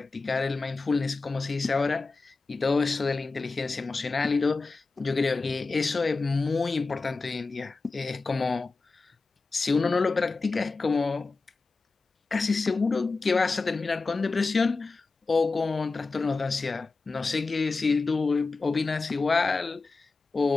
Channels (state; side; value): quieter; right; 3.9 dB